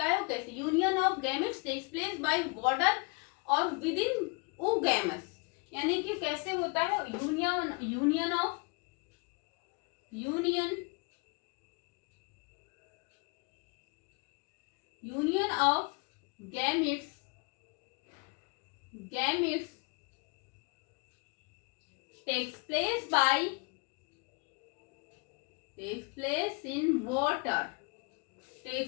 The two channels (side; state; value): right; quieter; 31.3 dB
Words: है वो कैसे, union of gametes takes place by water और विद इन ओगैमस। यानी कि कैसे होता है, union of gametes